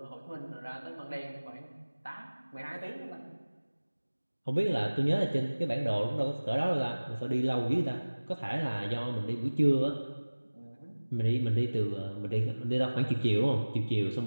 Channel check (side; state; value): both; inverted; correlation -1.00